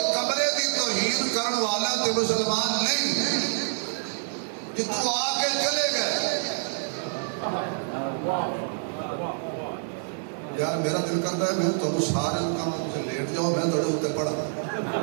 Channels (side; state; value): left; silent; digital silence